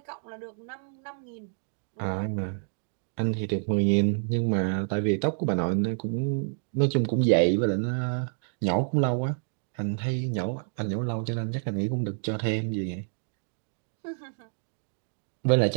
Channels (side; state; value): left; silent; digital silence